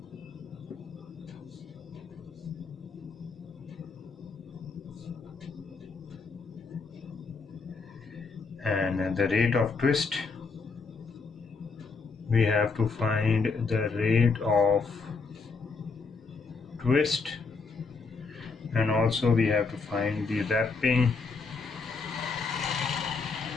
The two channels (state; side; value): quieter; right; 4.6 dB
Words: And the rate of twist, we have to find the rate of twist, and also we have to find the wrapping